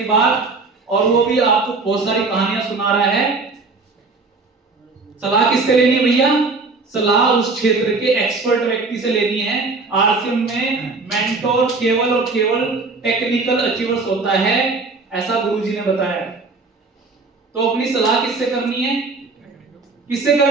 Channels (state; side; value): quieter; left; 3.9 dB